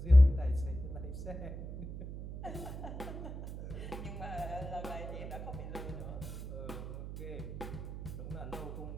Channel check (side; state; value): right; noise; hum, 8 dB below the sound